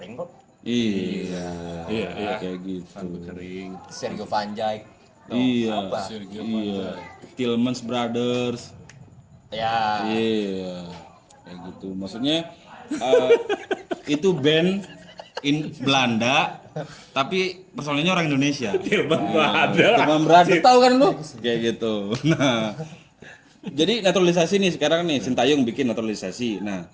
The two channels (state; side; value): identical; both; correlation 1.00